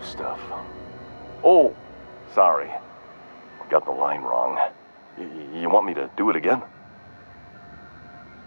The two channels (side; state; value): both; inverted; correlation -1.00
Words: stuff. Oh, sorry. Got the line wrong. You want me to do it again?